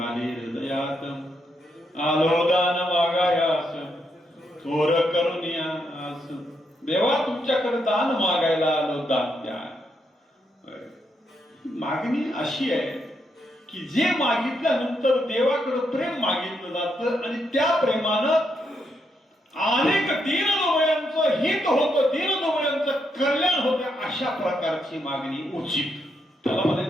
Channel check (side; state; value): both; normal; correlation 0.79